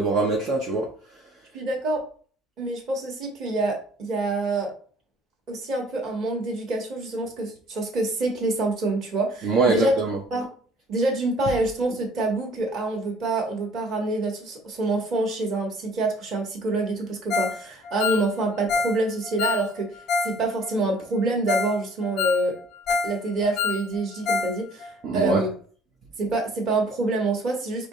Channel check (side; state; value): both; normal; correlation 0.55